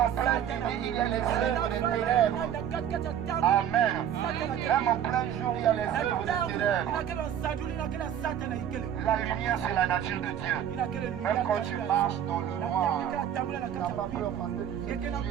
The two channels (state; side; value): quieter; left; 9.8 dB